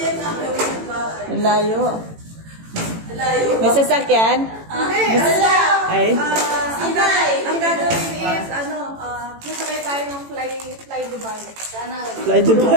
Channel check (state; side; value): late; left; 18 ms